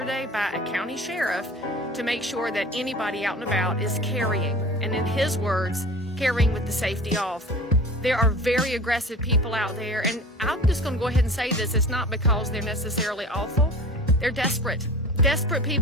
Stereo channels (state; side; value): normal; both; correlation 0.39